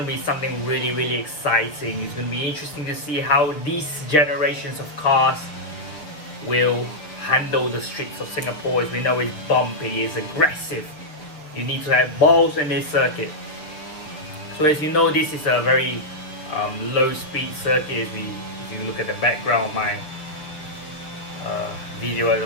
be something really exciting. It's gonna be interesting to see how these generations of cars will handle the streets of Singapore. As we know, it's bumpy, it's aggressive. You need to have balls in this circuit. So as you know, this is a very low speed circuit. If you look at the background of my video at the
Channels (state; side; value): late; right; 6.7 ms